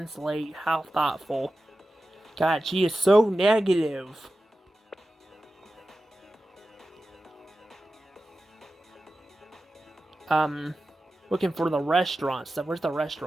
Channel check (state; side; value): normal; both; correlation 0.94